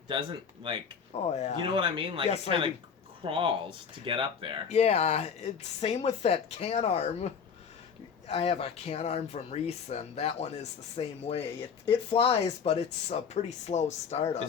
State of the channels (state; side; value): quieter; right; 6.6 dB